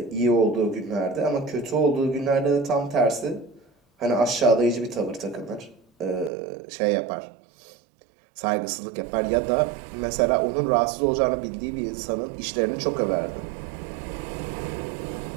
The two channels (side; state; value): left; drops out; at 6.3 s